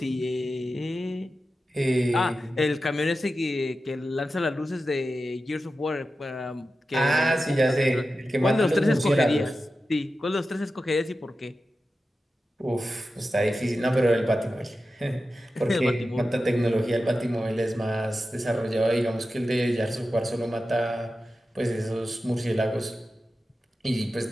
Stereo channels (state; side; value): normal; both; correlation 0.92